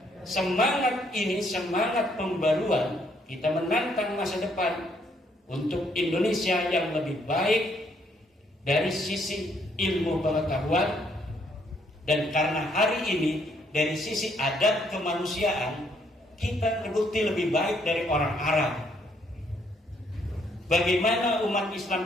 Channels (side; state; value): both; normal; correlation 0.69